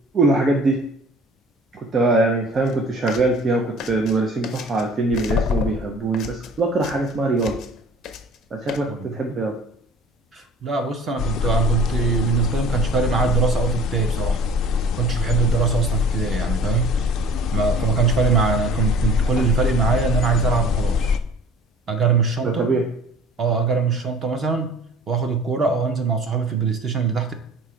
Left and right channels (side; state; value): both; normal; correlation 0.47